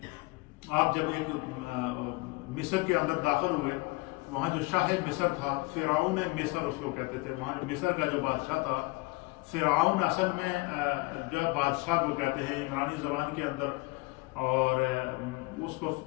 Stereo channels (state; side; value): quieter; right; 25.5 dB